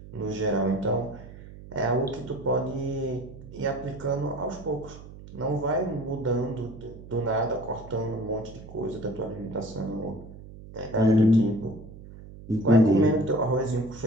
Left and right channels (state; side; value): noise; right; hum, 16 dB below the sound